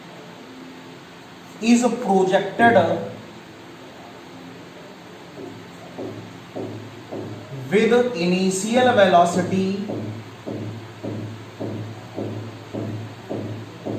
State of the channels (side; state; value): both; identical; correlation 1.00